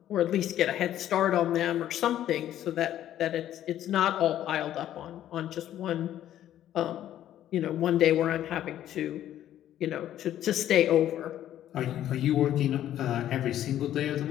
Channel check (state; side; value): quieter; right; 11.9 dB